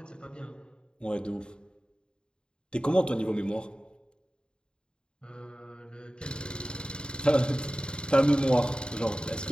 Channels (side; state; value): right; late; 0.050 ms